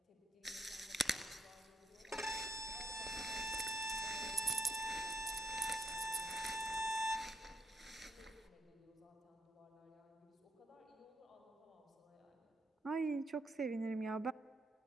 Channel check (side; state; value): both; normal; correlation 0.78